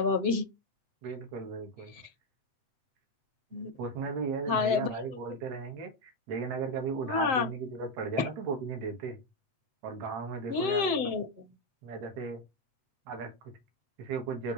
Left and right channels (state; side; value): late; left; 7.7 ms